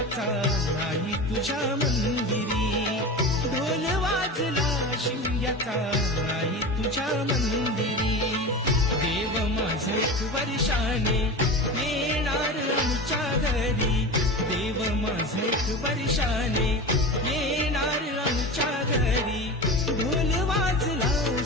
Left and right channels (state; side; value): normal; both; correlation 0.28